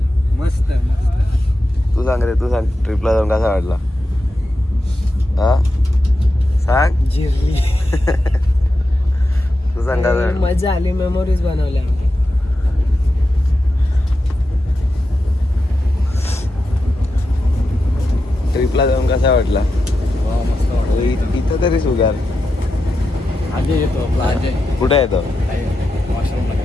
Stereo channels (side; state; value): both; normal; correlation 0.89